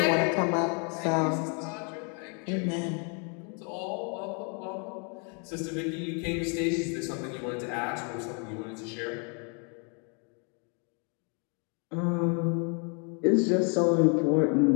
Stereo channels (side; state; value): right; quieter; 37.8 dB